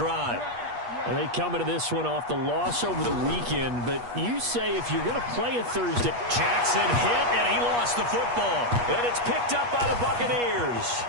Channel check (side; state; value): left; late; 8.3 ms